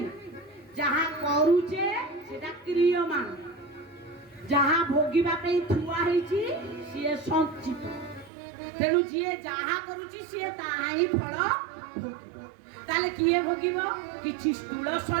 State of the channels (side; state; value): left; drops out; at 8.3 s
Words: जहा करूचे सेटा क्रियमान ଯାହା ଭୋଗିବା ପାଇଁ ଥୁଆ ହେଇଛି ସିଏ ସଞ୍ଚିତ। ତେଣୁ ଯିଏ ଯାହା କରୁଛି ସିଏ ତାହା ହିଁ ଫଳ ଭୋଗିବ। ତାହେଲେ କିଏ ଭୋଗିବ? କିଛି ସ୍ଥୂଳ